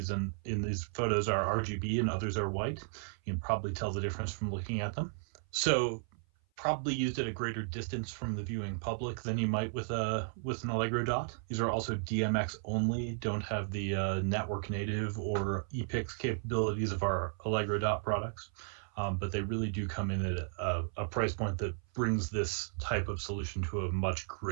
in these photos are RGB and others are white. You can probably tell the difference from looking at them. So probably used at a greater distance from the viewing public than you might with an Allegro dot. These are also DMX only, don't have the network native or ePix capabilities of our Allegro dot products, but they really do come in at a price point that brings this type of solution to a much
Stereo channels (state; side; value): silent; left; 55 dB below the other